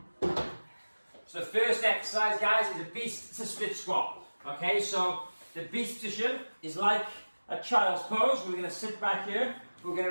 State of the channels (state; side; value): inverted; both; correlation -1.00